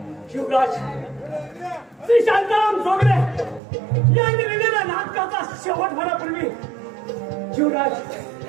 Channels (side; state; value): left; drops out; at 3.6 s